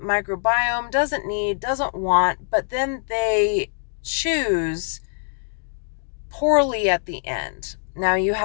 microbiome doesn't need, doesn't want, but then they choose poorly at the end. Now you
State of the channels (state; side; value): silent; right; digital silence